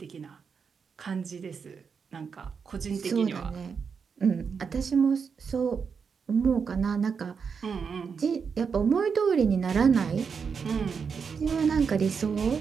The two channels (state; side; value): quieter; left; 6.0 dB